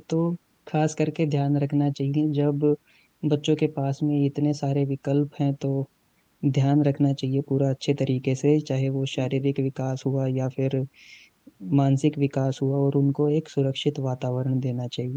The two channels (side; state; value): both; identical; correlation 1.00